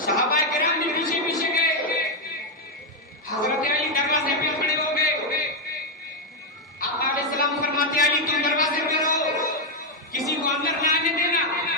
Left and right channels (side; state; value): both; normal; correlation 0.02